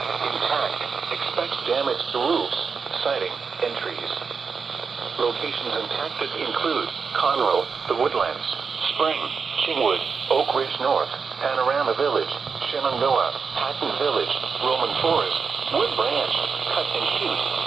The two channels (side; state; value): left; quieter; 5.5 dB